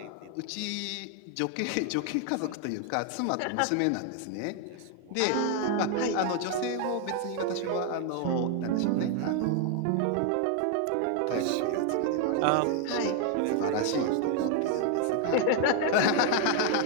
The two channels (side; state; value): both; different; correlation 0.00